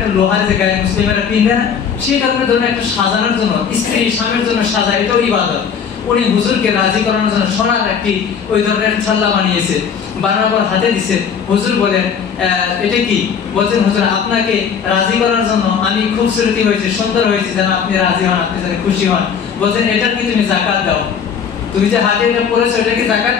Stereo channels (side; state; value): right; quieter; 7.0 dB